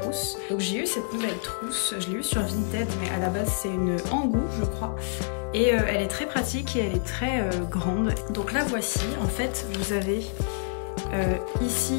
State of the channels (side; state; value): right; silent; digital silence